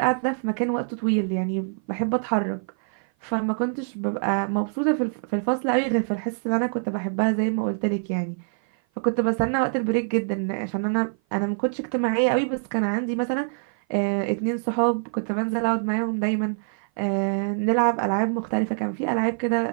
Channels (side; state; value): left; silent; 56 dB below the other